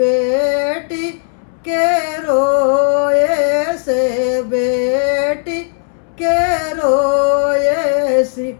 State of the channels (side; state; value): right; silent; 70 dB below the other